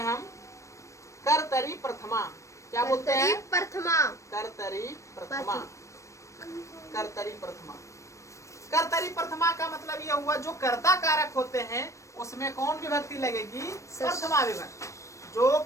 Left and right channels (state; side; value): late; right; 0.15 ms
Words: हम? कर्तरी प्रथमा। क्या बोलते हैं? प्रथमा। कर्तरी प्रथमा। कर्तरी प्रथमा का मतलब ये हुआ जो कर्ता कारक होते हैं उसमें कौन विभक्ति लगेगी? प्रथमा विभक्ति। जो